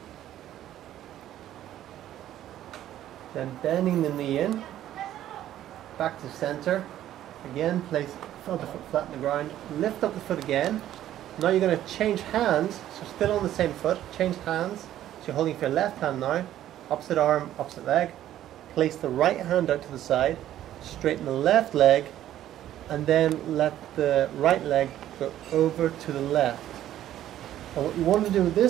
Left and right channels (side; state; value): left; quieter; 12.4 dB